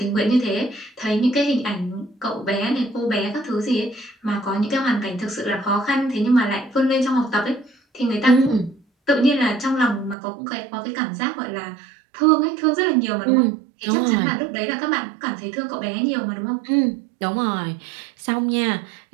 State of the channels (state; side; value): drops out; left; at 10.2 s